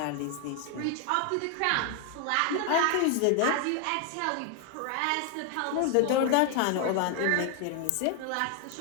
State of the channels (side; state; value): both; different; correlation 0.00